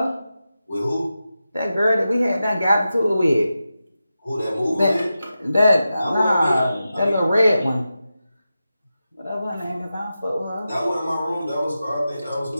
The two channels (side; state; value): both; inverted; correlation -0.91